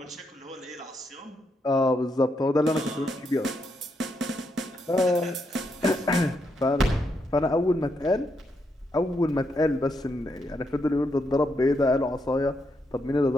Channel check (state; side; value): normal; both; correlation 0.80